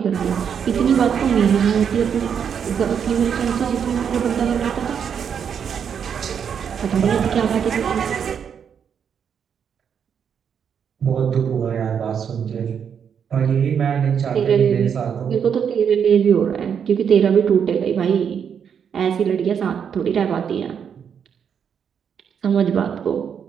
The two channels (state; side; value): quieter; left; 7.6 dB